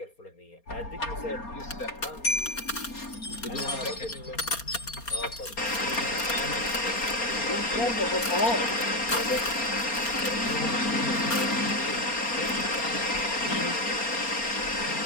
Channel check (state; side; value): late; right; 4.3 ms